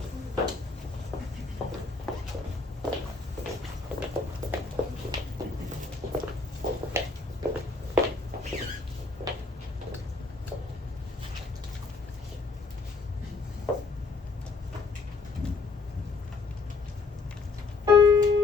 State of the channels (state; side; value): quieter; right; 4.0 dB